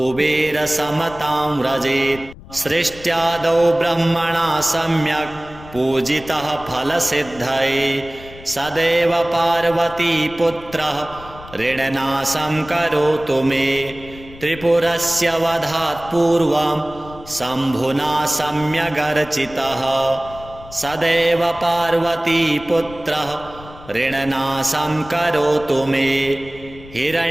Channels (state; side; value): noise; left; rumble, 18 dB below the sound